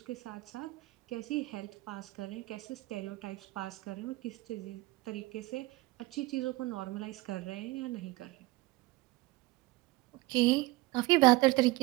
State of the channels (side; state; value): left; quieter; 21.0 dB